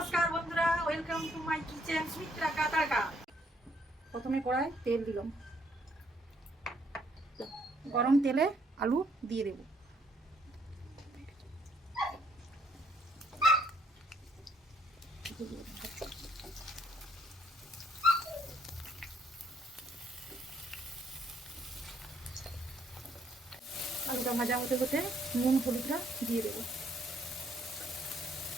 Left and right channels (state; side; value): normal; both; correlation 0.69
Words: বন্ধুরা, welcome to my kitchen Sumitra Katarka. প্রথমে কড়াই তেল দিলাম, গরম তেলে আলু দিয়ে দেব। আলুটা ভাজা হতে হতে নুন হলুদটা দিয়ে দেবো।